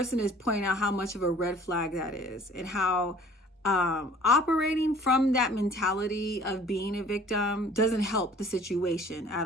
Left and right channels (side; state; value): both; normal; correlation 0.51